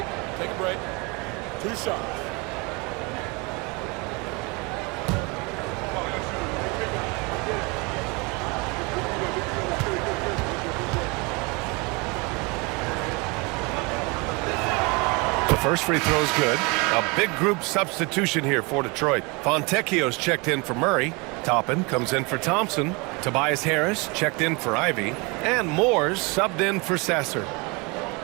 Take a break. 2 shots. First free throw is good. A big group substitution here for Detroit. Fontecchio's checked in for Murray. Toppin comes in for Thompson. Tobias Harris checked in for Ivy. And Moores subbed in for Sasser.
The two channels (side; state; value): left; quieter; 28.3 dB